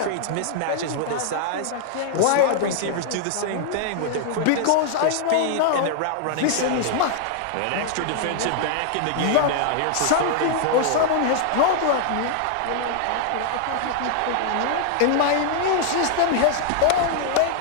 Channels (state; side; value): different; both; correlation -0.01